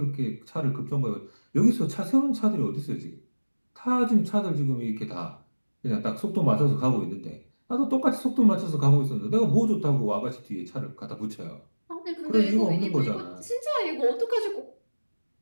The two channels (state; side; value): inverted; both; correlation -1.00